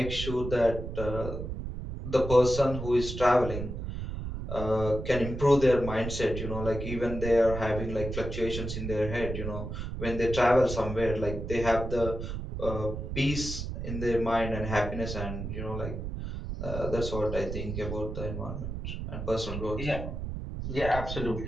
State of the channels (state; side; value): noise; right; rumble, 6 dB below the sound